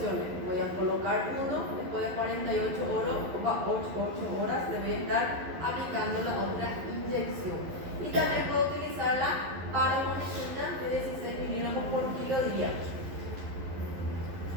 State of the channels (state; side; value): late; left; 11 ms